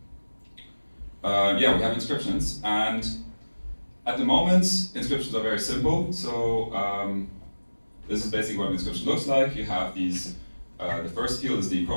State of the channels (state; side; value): inverted; both; correlation -1.00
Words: yeah, we have inscriptions, and at the moment inscriptions are very simple. So this is basically what an inscription looks like. You have these, the first field is the